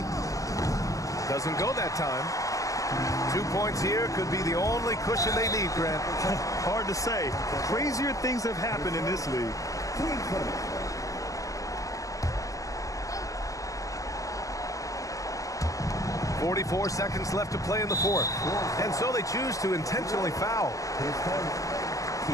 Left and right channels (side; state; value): right; late; 0.16 ms